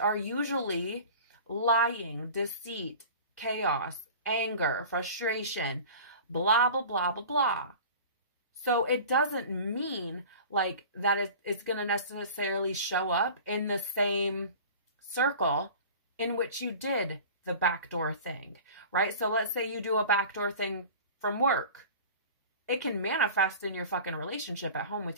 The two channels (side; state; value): both; inverted; correlation -0.40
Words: usually lying, deceit, chaos, anger, frustration, blah, blah, blah, blah, blah. So it doesn't mean like that it's going to necessarily show up in the same circle in which you did the backdoor thing, right? So let's say you do a backdoor thing from work. It can manifest in your fucking relationship at home